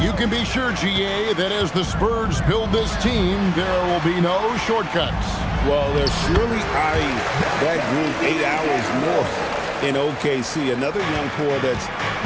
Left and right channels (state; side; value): identical; both; correlation 1.00